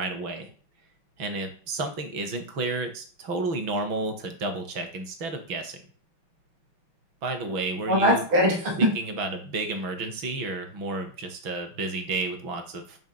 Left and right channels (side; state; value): left; late; 6.1 ms